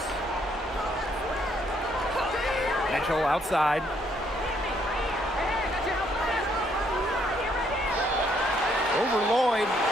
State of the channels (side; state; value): both; normal; correlation 0.70